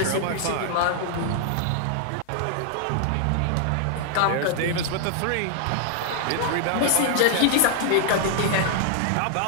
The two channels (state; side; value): different; both; correlation -0.01